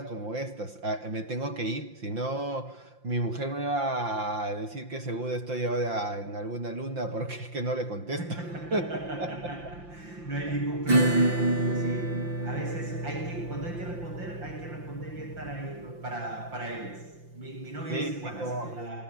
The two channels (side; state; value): left; late; 5.8 ms